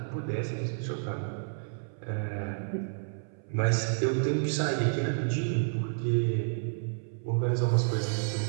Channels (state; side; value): silent; left; 58 dB below the other